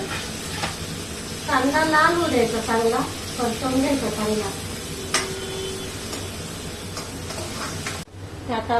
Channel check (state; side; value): identical; both; correlation 1.00